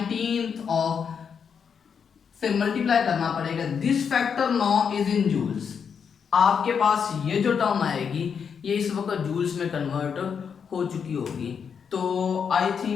of से मल्टीप्लाई करना पड़ेगा। This factor now is in joules. आपके पास ये जो टर्म आएगी ये इस वक्त जूल्स में कन्वर्ट हो चुकी होगी। तो I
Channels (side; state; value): right; quieter; 6.8 dB